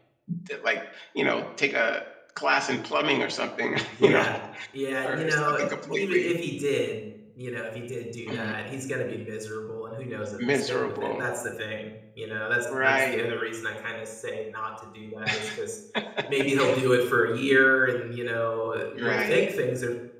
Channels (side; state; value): both; identical; correlation 1.00